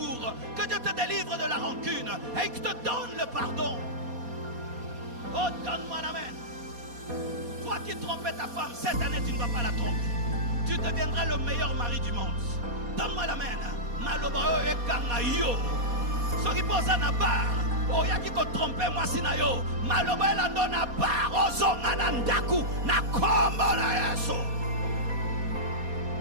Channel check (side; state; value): left; late; 4.2 ms